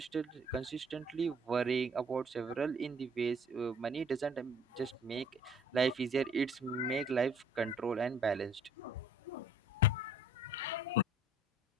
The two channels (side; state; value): both; normal; correlation 0.55